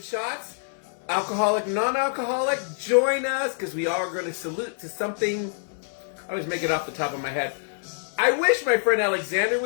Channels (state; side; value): silent; right; 61 dB below the other